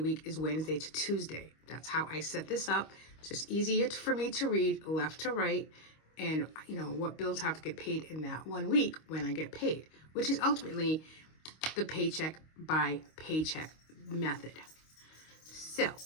is Wednesday to Tuesday. That's how I set this up. It's just easier for me to read left to right and, you know, what bills have to get paid in that 1 week when I get paid, which is ultimately the paycheck by paycheck method. So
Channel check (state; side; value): late; right; 25 ms